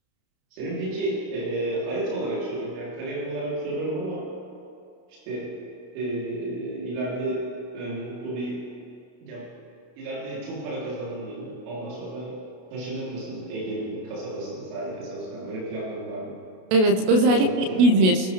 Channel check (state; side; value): late; left; 32 ms